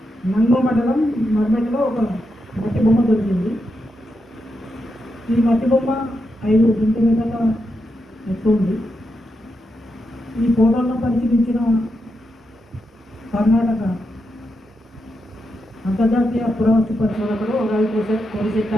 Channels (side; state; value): both; normal; correlation 0.85